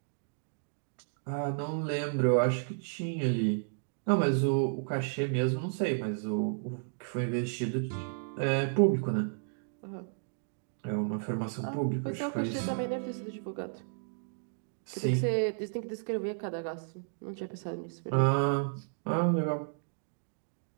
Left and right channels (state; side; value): silent; left; digital silence